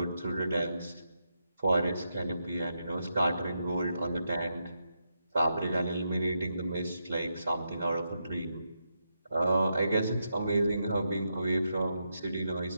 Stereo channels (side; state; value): both; inverted; correlation -0.84